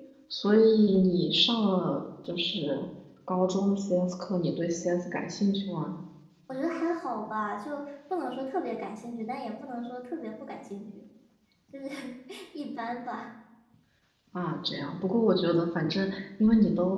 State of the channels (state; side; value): identical; both; correlation 1.00